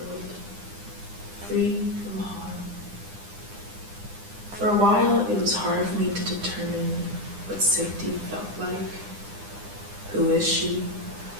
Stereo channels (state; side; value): late; left; 9.9 ms